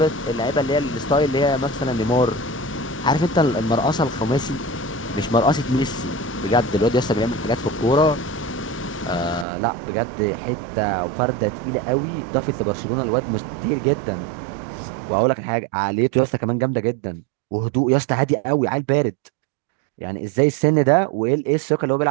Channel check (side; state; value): left; drops out; at 9.5 s